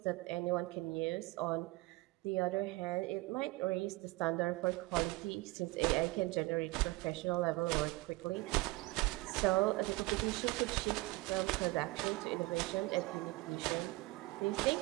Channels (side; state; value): left; quieter; 21.8 dB